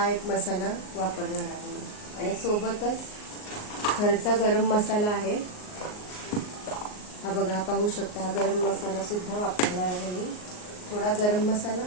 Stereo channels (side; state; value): right; late; 38 ms